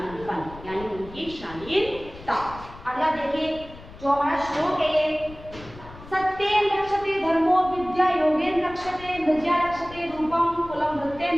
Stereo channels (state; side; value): noise; left; rumble, 17 dB below the sound